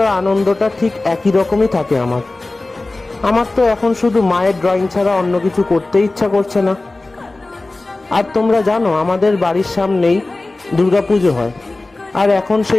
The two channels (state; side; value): quieter; right; 3.1 dB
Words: আনন্দটা ঠিক একই রকমই থাকে আমার তো এখন শুধু মায়ের ড্রয়িং ছাড়া অন্য কিছু করতে ইচ্ছা করছে না। আর তোমরা জানো, আমাদের বাড়ির সামনেই দুর্গাপুজো হয়, আর এখন